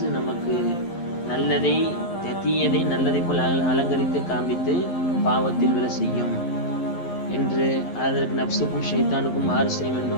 நமக்கு நல்லதை தீயதை நல்லதை போல் அலங்கரித்து காண்பித்து பாவத்தில் விழ செய்யும் என்று, அதற்கு நப்சுக்கும் ஷைத்தானுக்கும் மாறு செய்ய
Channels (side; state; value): right; late; 11 ms